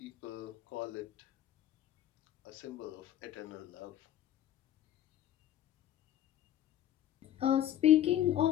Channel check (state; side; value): quieter; right; 11.8 dB